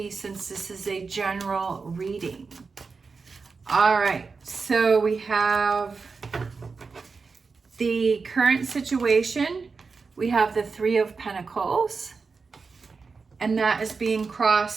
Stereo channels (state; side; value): quieter; left; 4.7 dB